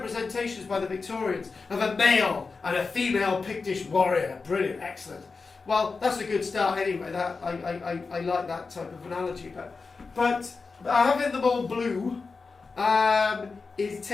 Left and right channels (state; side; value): quieter; right; 4.4 dB